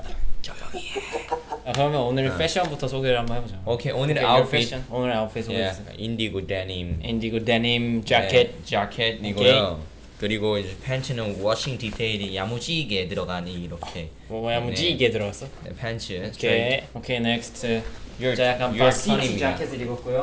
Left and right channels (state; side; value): identical; both; correlation 1.00